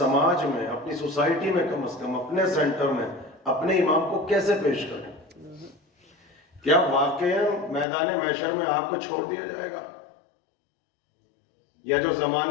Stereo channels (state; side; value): drops out; right; at 7.9 s